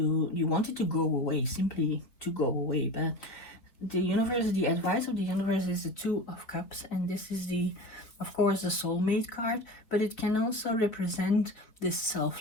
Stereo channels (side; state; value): right; late; 4.0 ms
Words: want it to go away, simply to go away. But the universe, the advice of the universe is the Two of Cups, and this is the, of course, the soulmate card, but it can also represent this